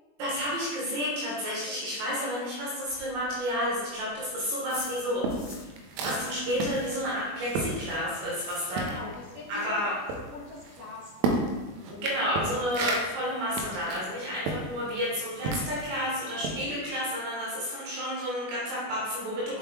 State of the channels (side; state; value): left; late; 20 ms